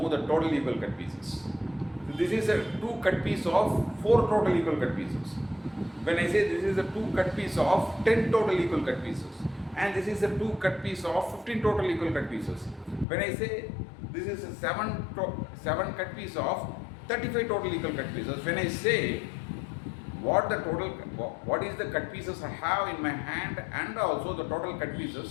the total equal cut pieces. So this is a 2 cut piece of 4 total equal cut pieces. When I say this is a 2 cut piece of 10 total equal cut pieces, and this is a 2 cut piece of 15 total equal cut pieces. When I say this is a 7 cut piece of 35 total equal cut pieces, when I say what is the cut pieces I have in my hand and also the total cut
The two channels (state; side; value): drops out; right; at 13.1 s